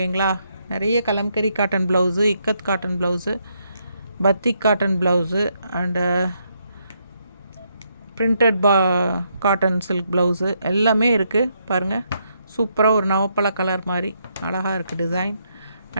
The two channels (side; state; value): both; inverted; correlation -0.76